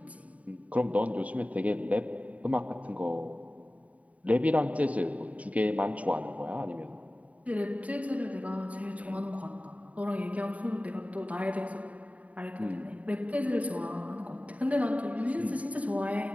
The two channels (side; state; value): left; late; 0.068 ms